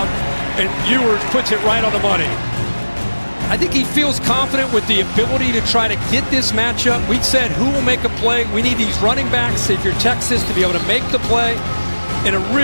and Ewers puts it right on the money. I think he feels confident with the ability to try to get this matchup. We said who will make a play. We need these running backs, if you're Texas, to be able to make the play. And a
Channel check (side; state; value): both; inverted; correlation -1.00